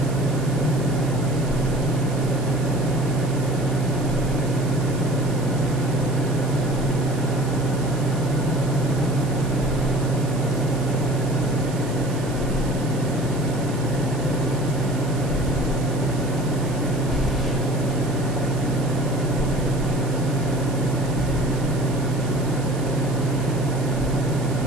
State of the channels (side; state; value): right; noise; hiss, 17 dB below the sound